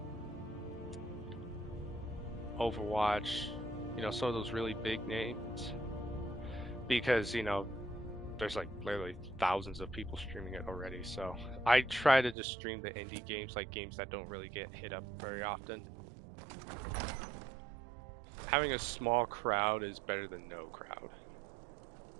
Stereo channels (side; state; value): left; drops out; at 12.4 s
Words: Overwatch, you know, some of those really big names, because you know there's like literally thousands of people streaming it already. So I try to just stream the indie games, like games that don't really get hit up very often. Having a small crowd is better than no crowd.